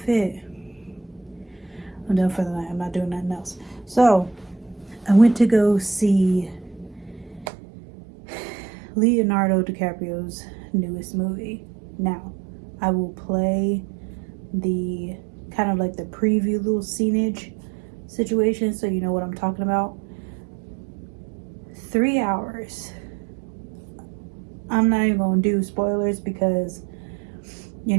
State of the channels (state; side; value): drops out; left; at 7.5 s